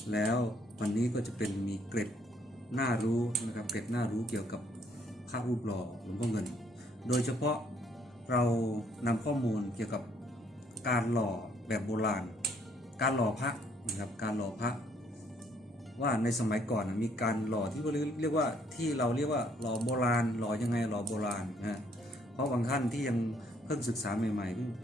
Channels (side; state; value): both; normal; correlation 0.66